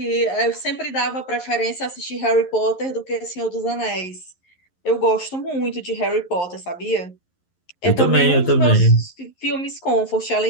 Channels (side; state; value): right; late; 11 ms